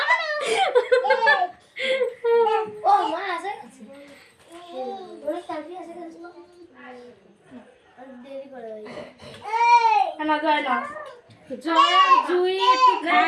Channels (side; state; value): both; identical; correlation 1.00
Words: ও মা আছে ওরে সার্ভি আছে কিন্তু আর দেরি করে না যায় না জয় জুই একটু